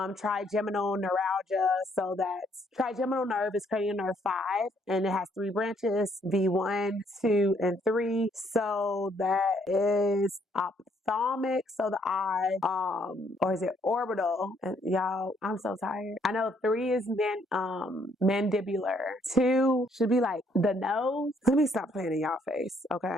trigeminal neuralgia. So that's trigeminal nerve is cranial nerve 5 and it has 3 branches, V1, 2, and 3. So that is ophthalmic, so the eye, or is it orbital? And y'all, I'm so tired. I know 3 is mandibular. 2 should be like the nose. Let me stop playing in y'all face, okay?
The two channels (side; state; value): both; normal; correlation 0.68